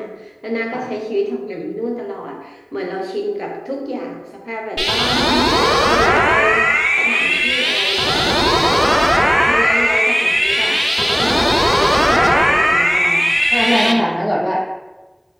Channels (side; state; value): both; identical; correlation 1.00